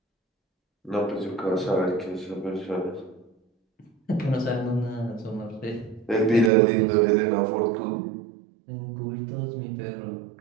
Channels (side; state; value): left; drops out; at 6.5 s